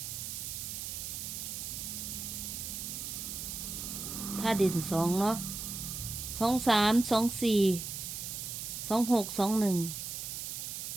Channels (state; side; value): noise; right; hiss, 5 dB below the sound